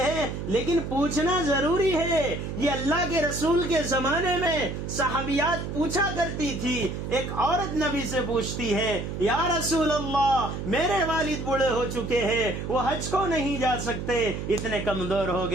ہیں، لیکن پوچھنا ضروری ہے۔ یہ اللہ کے رسول کے زمانے میں صحابیات پوچھا کرتی تھی، ایک عورت نبی سے پوچھتی ہے، یا رسول اللہ میرے والد بوڑھے ہو چکے ہیں، وہ حج کو نہیں جا سکتے، اتنے کمزور ہو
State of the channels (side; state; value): right; noise; hum, 5 dB below the sound